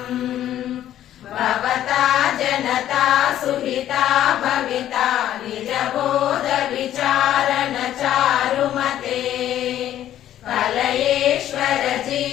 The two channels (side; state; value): right; quieter; 11.9 dB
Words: భవతా జనతా సుహితా భవితా నిజబోధ విచారణ చారుమతే కలయేశ్వర